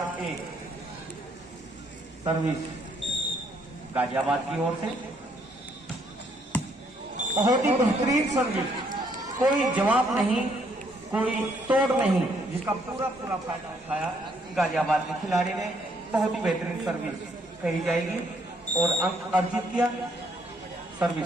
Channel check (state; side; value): normal; both; correlation 0.69